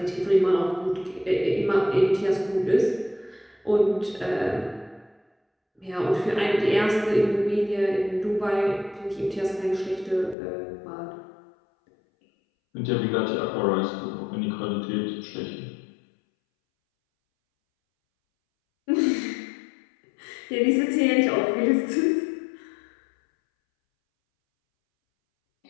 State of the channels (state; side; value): drops out; right; at 10.4 s